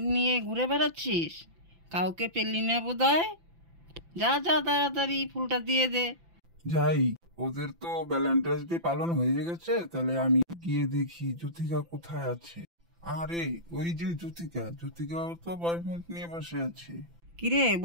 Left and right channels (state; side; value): late; left; 5.9 ms